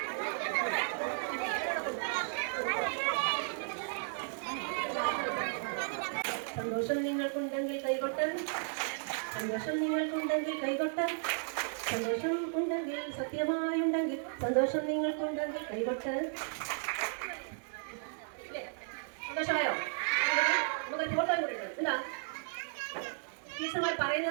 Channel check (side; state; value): left; silent; digital silence